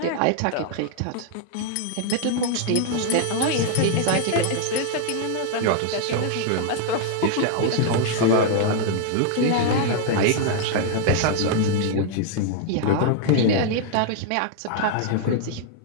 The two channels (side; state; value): both; different; correlation -0.01